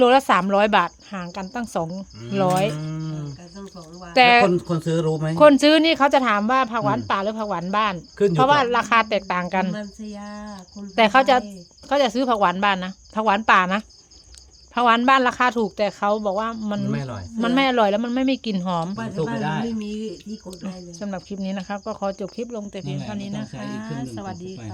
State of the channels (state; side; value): identical; both; correlation 1.00